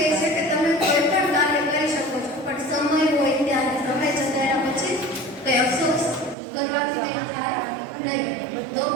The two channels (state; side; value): drops out; left; at 6.4 s